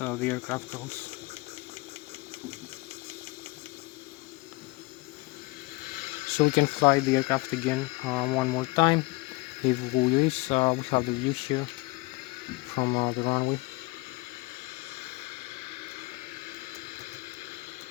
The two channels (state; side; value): quieter; right; 23.7 dB